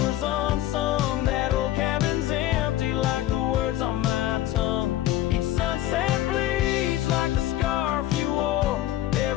unsung. On my tongue, each sunset bleeds like the scarf you wore.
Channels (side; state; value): right; quieter; 14.1 dB